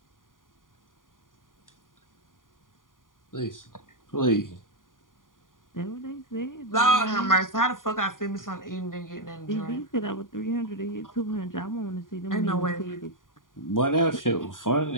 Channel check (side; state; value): right; late; 0.89 ms